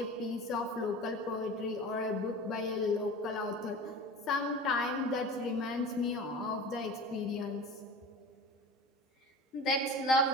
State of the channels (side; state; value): both; normal; correlation 0.35